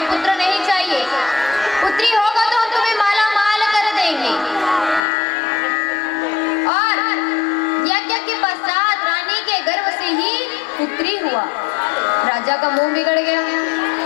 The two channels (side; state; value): right; drops out; at 5.0 s